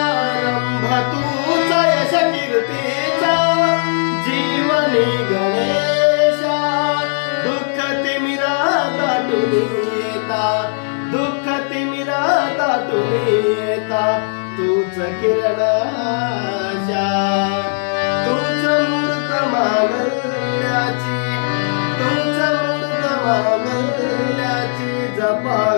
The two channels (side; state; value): right; silent; digital silence